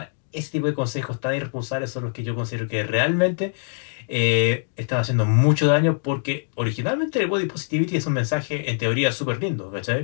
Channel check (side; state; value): right; silent; digital silence